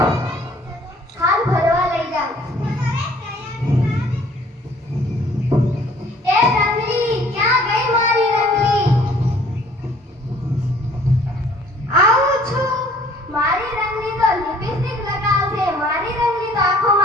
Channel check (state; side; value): normal; both; correlation 0.56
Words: ખાલ ભરવા લઈ જાઉં. એ રંગલી ક્યાં ગઈ મારી રંગલી? આવું છું. મારી રંગલી તો લિપસ્ટિક લગાવશે, મારી રંગલી તો